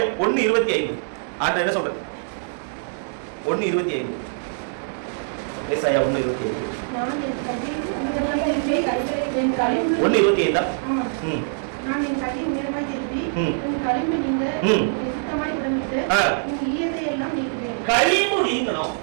1:25 ஆண்டவர் என்ன சொல்றாரு? 1:25 ஏசாயா 1:25 1:25 நான் என் கையை உயரமாய் திருப்பி என் களிம்பு நீங்க சுத்தமாய் உடம்பிட்டு எல்லாம் நீக்குவேன். களிம்பு நீங்கணும்.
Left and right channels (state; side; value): silent; left; digital silence